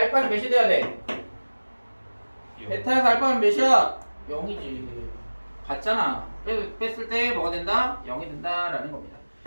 몇이 돼야 돼? 베타에서 알파는 몇이야? 0이지. 같잖아. 뺐을 때 뭐가 된다? 0이 된다라는 겁니다.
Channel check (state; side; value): inverted; both; correlation -1.00